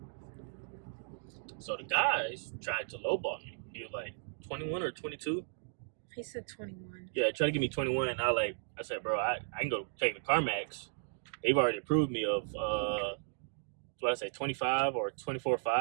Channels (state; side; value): silent; left; digital silence